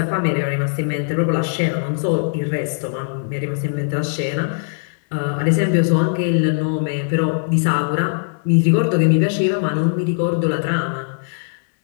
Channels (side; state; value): right; silent; digital silence